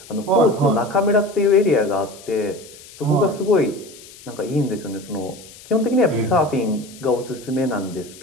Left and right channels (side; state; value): left; noise; hiss, 20 dB below the sound